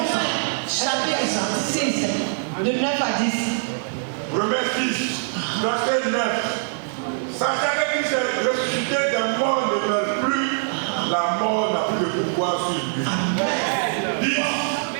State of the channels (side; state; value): left; silent; digital silence